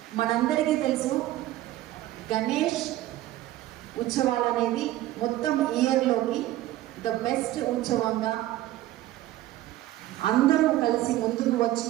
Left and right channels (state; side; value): quieter; left; 15.2 dB